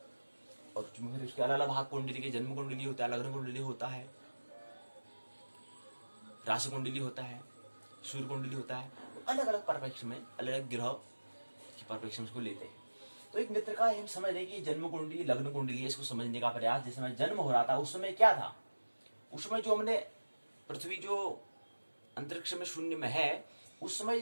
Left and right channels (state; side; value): inverted; both; correlation -1.00